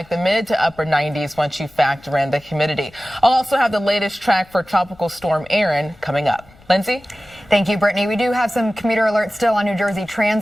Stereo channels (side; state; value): left; noise; rumble, 27 dB below the sound